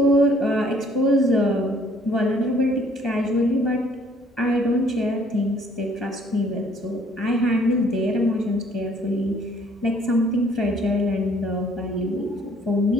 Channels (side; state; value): both; normal; correlation 0.60